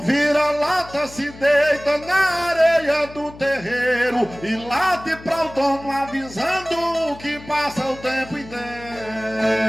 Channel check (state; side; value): noise; left; hum, 18 dB below the sound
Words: vira-lata se deita na areia do terreiro e late pra o dono avisando que passa o tempo inteiro.